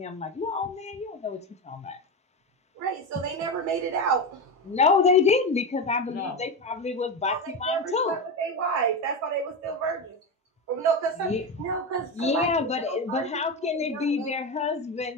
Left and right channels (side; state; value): both; normal; correlation 0.17